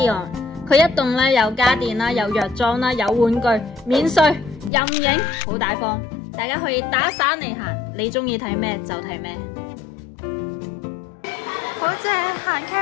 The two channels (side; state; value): right; drops out; at 4.7 s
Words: 佢一棟咧有家電啦，有藥妝啦，有玩具，免稅任影，好大方。大家可以打散嚟行，你中意睇咩就睇咩。好正，行